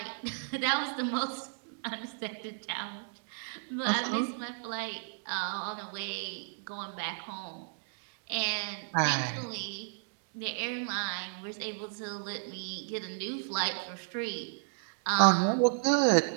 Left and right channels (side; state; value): left; silent; digital silence